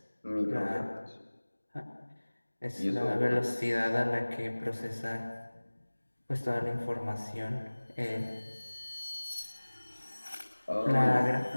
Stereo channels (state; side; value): inverted; both; correlation -1.00